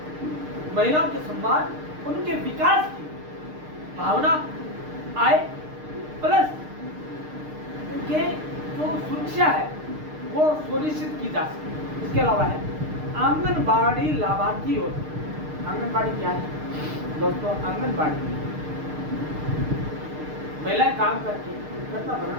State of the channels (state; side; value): late; left; 6.6 ms